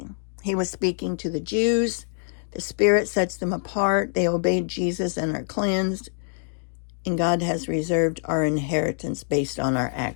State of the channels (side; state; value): right; silent; 58 dB below the other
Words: He was speaking to the Jews. The Spirit sets them apart. They obeyed Jesus and are cleansed. And God has reserved our inheritance based on our